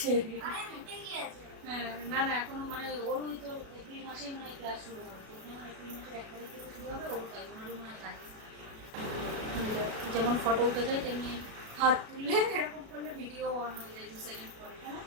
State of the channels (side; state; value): left; late; 37 ms